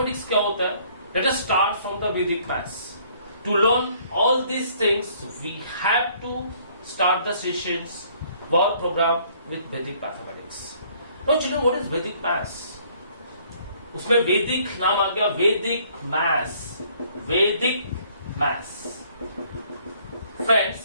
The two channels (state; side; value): inverted; both; correlation -0.61